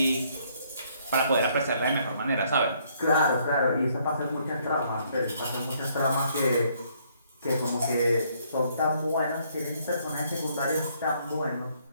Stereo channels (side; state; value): both; inverted; correlation -0.67